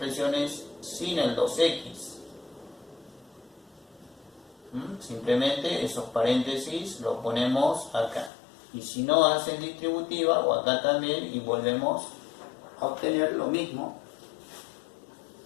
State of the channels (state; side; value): drops out; right; at 8.3 s